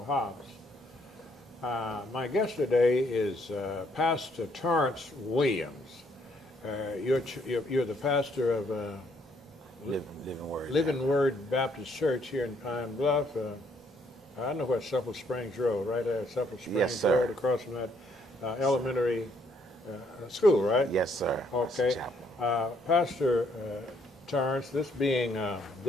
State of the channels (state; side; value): normal; both; correlation 0.69